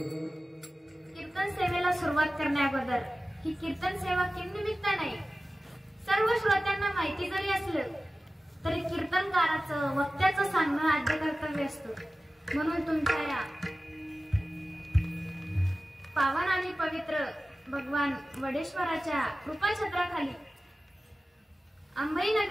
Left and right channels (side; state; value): both; normal; correlation 0.95